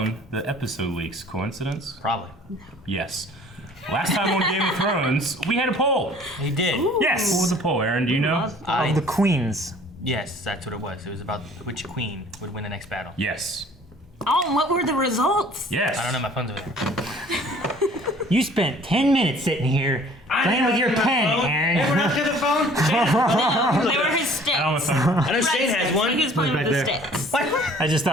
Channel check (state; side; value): normal; both; correlation 0.53